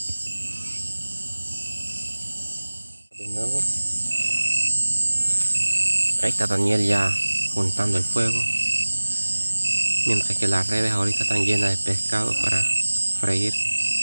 De nuevo, ahí está Daniel ya juntando el fuego, mientras que las redes ahorita están llenas de pescado para freír.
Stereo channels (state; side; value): inverted; both; correlation -1.00